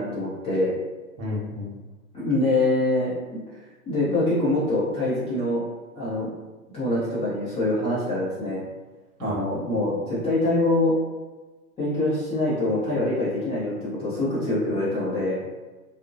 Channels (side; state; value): both; normal; correlation 0.36